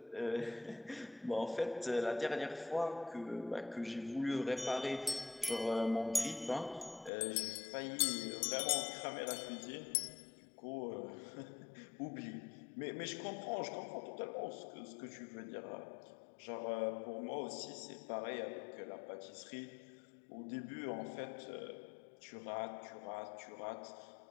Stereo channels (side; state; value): right; drops out; at 7.1 s